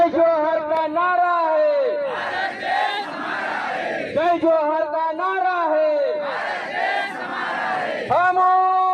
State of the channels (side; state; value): both; identical; correlation 1.00